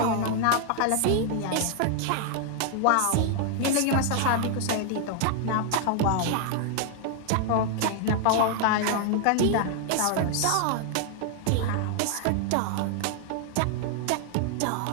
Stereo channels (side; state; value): both; different; correlation 0.00